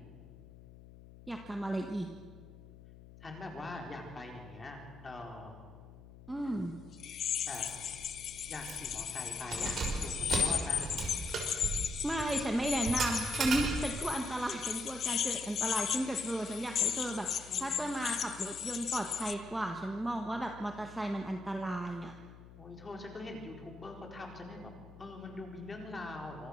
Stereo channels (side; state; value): left; noise; hum, 18 dB below the sound